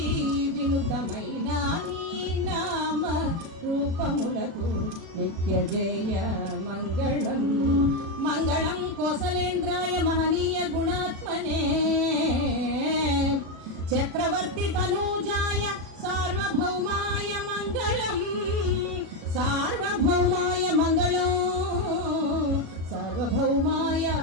వినుతమైన నీ నామ రూపములకు నిత్య జయ మంగళం. మంగళం కోసలేంద్రాయ మహనీయ గుణాత్మనే చక్రవర్తి తనూజాయ సార్వభౌమాయ మంగళం. సార్వభౌమాయ మంగళం, సార్వభౌమాయ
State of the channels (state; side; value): late; left; 36 ms